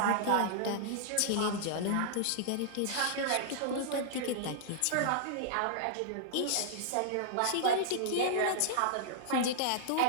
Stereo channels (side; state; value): both; different; correlation -0.01